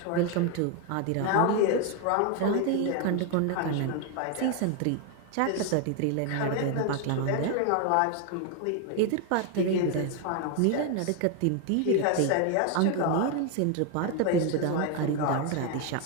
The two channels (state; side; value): different; both; correlation 0.01